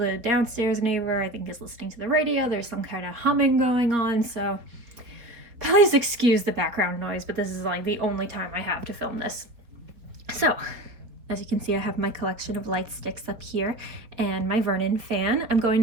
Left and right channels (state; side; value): late; left; 3.9 ms